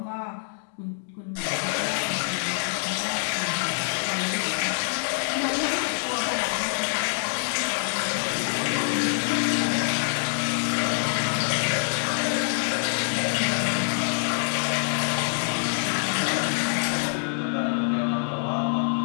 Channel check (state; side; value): silent; right; digital silence